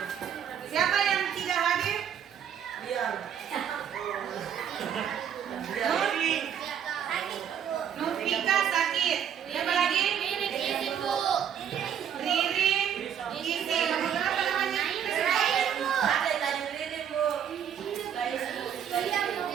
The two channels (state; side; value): quieter; left; 8.8 dB